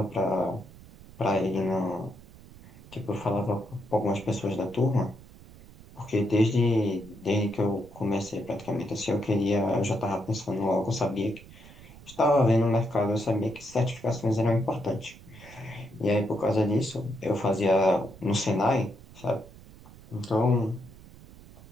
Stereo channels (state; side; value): noise; right; rumble, 20 dB below the sound